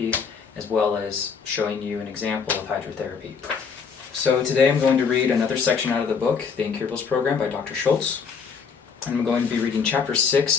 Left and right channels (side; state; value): right; quieter; 5.9 dB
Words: as well as showing you an example of hydrotherapy. So today I'm going to read another section out of the book, the Incurables program by Dr. Schulze, and I'm going to be reading chapter